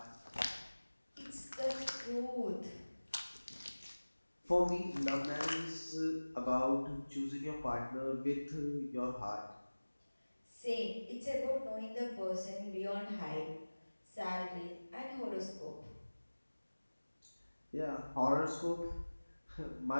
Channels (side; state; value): both; inverted; correlation -1.00